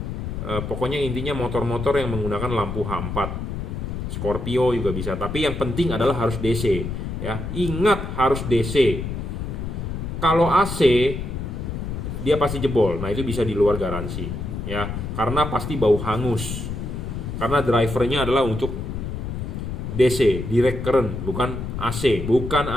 Pokoknya intinya motor-motor yang menggunakan lampu H4. Scorpio juga bisa. Tapi yang penting adalah harus DC ya. Ingat harus DC. Kalau AC dia pasti jebol. Nah, itu bisa di luar garansi ya. Karena pasti bau hangus. Karena drivernya adalah untuk DC, direct current, bukan AC,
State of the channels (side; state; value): left; noise; rumble, 5 dB below the sound